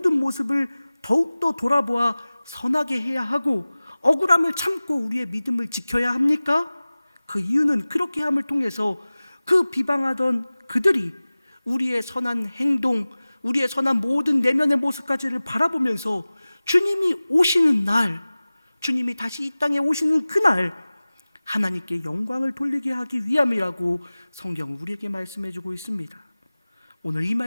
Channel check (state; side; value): inverted; both; correlation -0.98